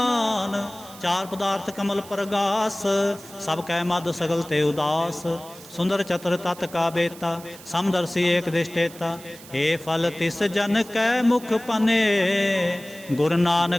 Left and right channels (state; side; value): noise; right; hiss, 18 dB below the sound